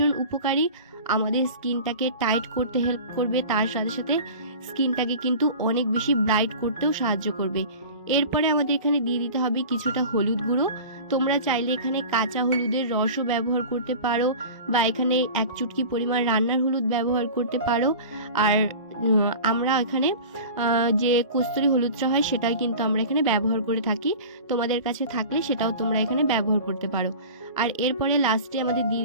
উপকারী। আমাদের স্কিনটাকে টাইট করতে হেল্প করবে, তার সাথে সাথে স্কিনটাকে কিন্তু অনেক বেশি ব্রাইট করতেও সাহায্য করবে। এরপরে আমাদের এখানে দিয়ে দিতে হবে কিছুটা হলুদ গুঁড়ো। তোমরা চাইলে এখানে কাঁচা হলুদের রসও ব্যবহার করতে পারো, বা এখানে 1 চুটকি পরিমাণ রান্নার হলুদ ব্যবহার করতে পারো। আর আমরা এখানে যে কস্তুরি হলুদটা হয় সেটাই কিন্তু আমরা এখানে ব্যবহার করে থাকি। তোমাদের কাছে থাকলে সেটাও তোমরা এখানে ব্যবহার করতে পারো। আর এরপরে লাস্টে আমাদের দিয়ে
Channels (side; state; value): both; inverted; correlation -0.37